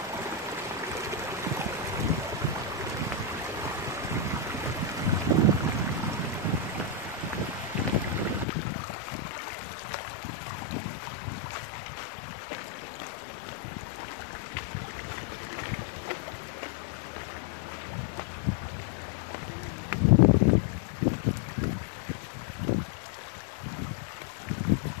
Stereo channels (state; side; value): drops out; right; at 8.5 s